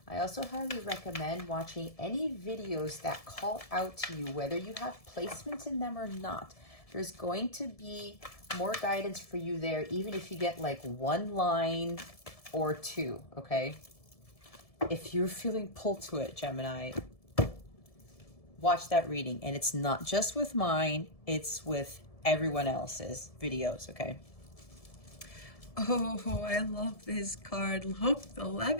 I also highly recommend watching any videos that call out to you, whether you have placements in them or not. There's going to be more guidance for you there, even if you get like one line or two, okay? If you're feeling pulled to it, Gemini, watch that reading. And it's not just with mine, it's with everyone else's videos, okay? Oh, I love this card. Look,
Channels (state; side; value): late; right; 1.7 ms